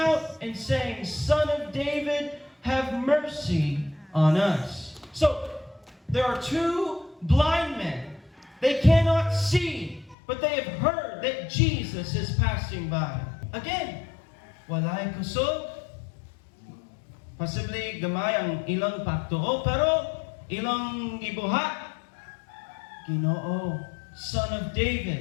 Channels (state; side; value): drops out; right; at 10.2 s